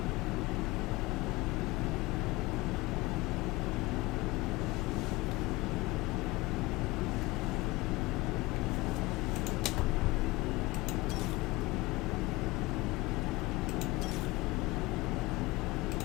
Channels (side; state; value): right; quieter; 21.6 dB